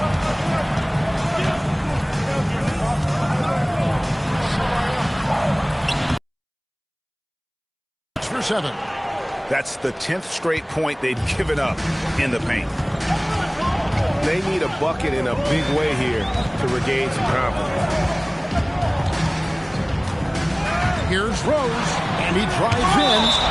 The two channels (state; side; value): identical; both; correlation 1.00